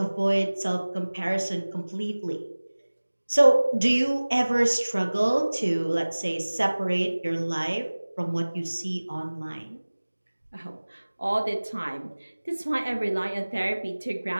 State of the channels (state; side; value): inverted; both; correlation -1.00